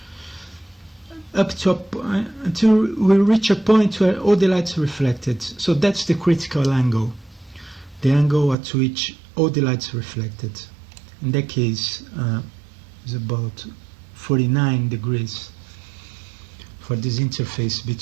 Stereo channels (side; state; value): left; drops out; at 8.6 s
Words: until we reach a point where all the light is reflected. So that's the critical angle, the angle at which all the light is reflected. In that case, is about 49 degrees for this interface